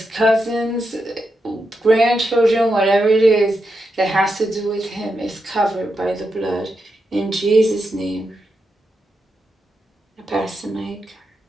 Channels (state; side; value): normal; both; correlation 0.85